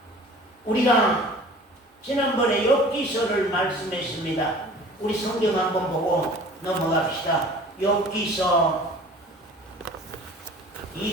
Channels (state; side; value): normal; both; correlation 0.45